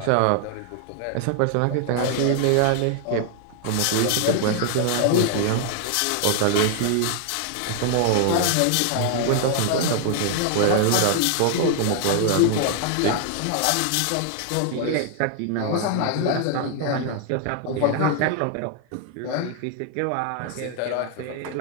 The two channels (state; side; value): different; both; correlation 0.00